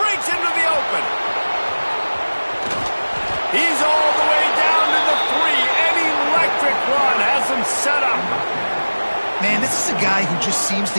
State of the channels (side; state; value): both; inverted; correlation -1.00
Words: into the open. He's all the way down to the 3. Run has him set up. Man, this is a guy who just seems to